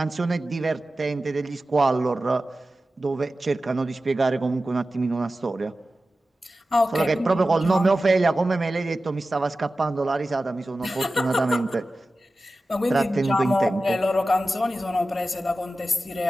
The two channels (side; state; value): both; normal; correlation 0.95